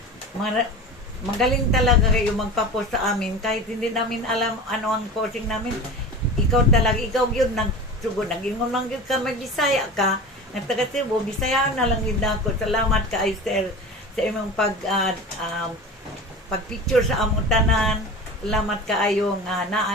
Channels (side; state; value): both; normal; correlation 0.33